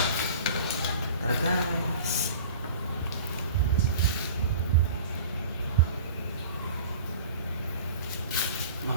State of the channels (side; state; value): both; inverted; correlation -0.42